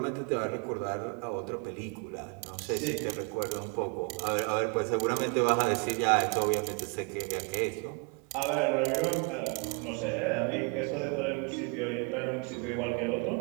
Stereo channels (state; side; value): quieter; left; 35.1 dB